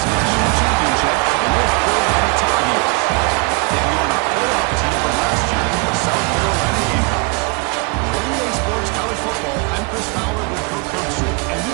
national championship, the North Carolina Tar Heels, taking on a playoff team from last year, the South Carolina Gamecocks. For EA Sports College Football, I'm Chris Fowler with Kirk Herbstreit, and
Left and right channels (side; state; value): left; quieter; 29.3 dB